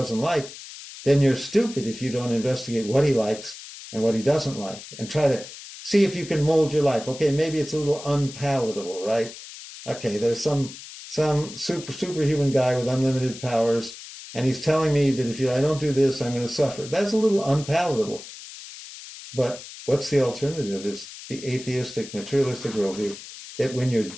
like, then you're stupid if you don't investigate what he likes and what he doesn't like and try to see if you can mold your life. Okay, maybe it's a little unpalatable, right? Okay, there's some superhuman guy with unlimited powers, and he's telling me that if I don't do this, I'm going to suffer. That's a little unpalatable. But what's the alternative? Is the atheistic, materialistic worldview that when you're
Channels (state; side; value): noise; left; hiss, 14 dB below the sound